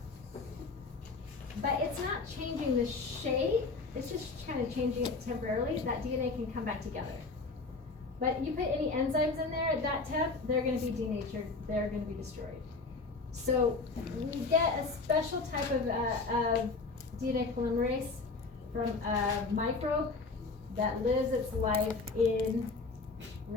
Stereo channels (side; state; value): right; quieter; 3.9 dB